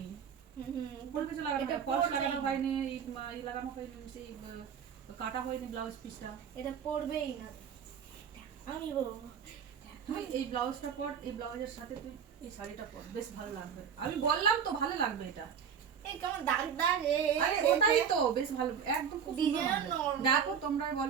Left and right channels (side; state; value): left; quieter; 7.5 dB